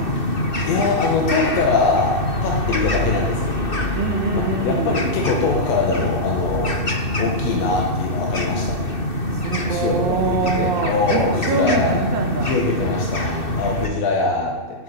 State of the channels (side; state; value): right; late; 2.6 ms